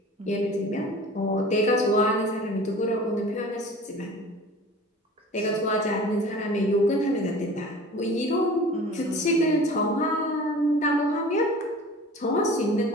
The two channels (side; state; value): both; normal; correlation 0.42